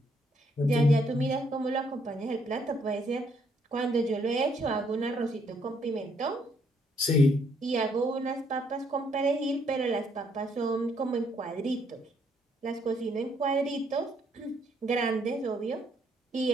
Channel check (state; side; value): normal; both; correlation 0.70